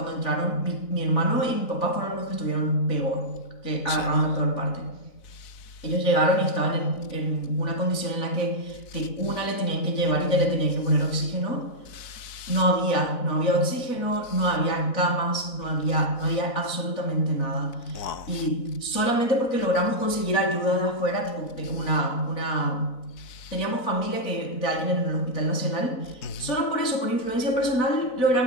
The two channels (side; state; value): right; late; 4.0 ms